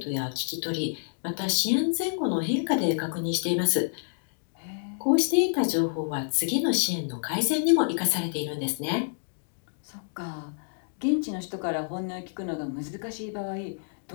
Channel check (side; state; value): right; silent; digital silence